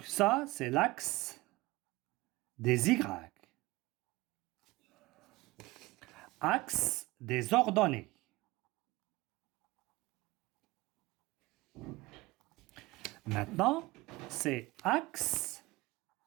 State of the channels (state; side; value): quieter; left; 20.4 dB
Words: ça, c'est l'axe des Y. Axe des ordonnées. Maintenant, c'est axe